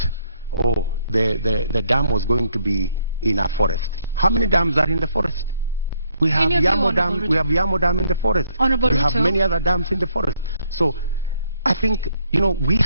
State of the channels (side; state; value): both; inverted; correlation -0.69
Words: the dam was going to be in a forest. How many dams are in the forest? We have Yamo Dam. We have Yamo Dam in the forest. Honorable we have Ruto. many other dams in the forest. So I think, we